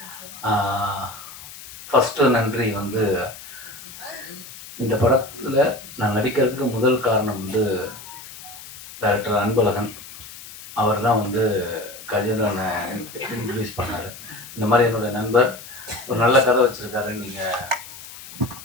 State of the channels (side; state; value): left; noise; hiss, 15 dB below the sound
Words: ஃபஸ்ட்டு நன்றி வந்து இந்த படத்தில் நான் நடிக்கிறதுக்கு முதல் காரணம் வந்து டைரக்டர் அன்பழகன். அவர் தான் வந்து கஜேந்திரனை இன்ட்ரடியூஸ் பண்ணார். இந்த மாதிரி என்னுடைய நண்பர் ஒரு நல்ல கதை வச்சுருக்காரு, நீங்கள்